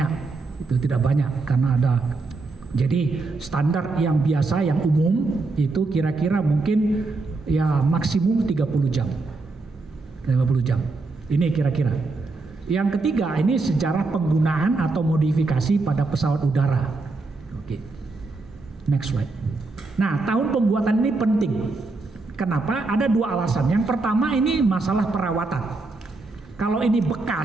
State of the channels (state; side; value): quieter; left; 3.5 dB